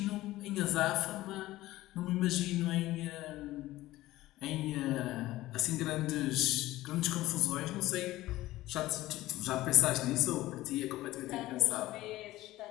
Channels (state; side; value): quieter; right; 16.7 dB